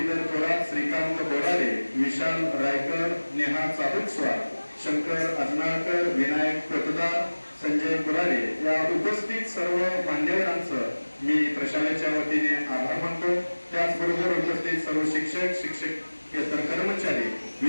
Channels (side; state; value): both; inverted; correlation -1.00